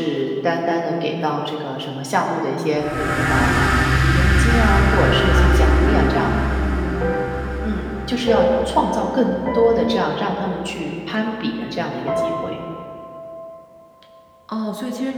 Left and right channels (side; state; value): both; identical; correlation 1.00